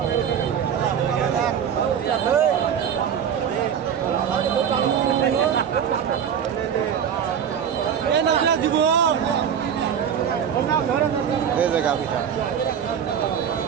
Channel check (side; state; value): left; quieter; 8.2 dB